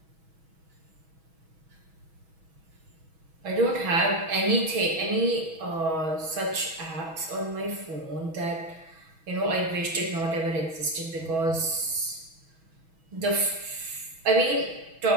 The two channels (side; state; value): left; late; 6.2 ms